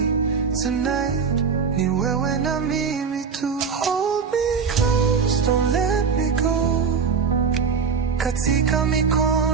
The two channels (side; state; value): left; quieter; 5.9 dB